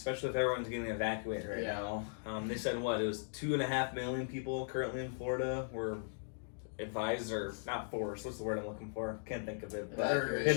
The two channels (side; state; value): right; silent; digital silence